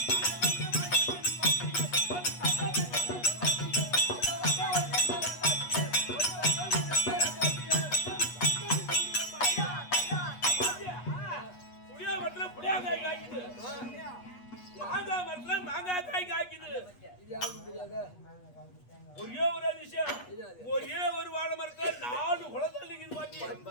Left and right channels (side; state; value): right; late; 8.3 ms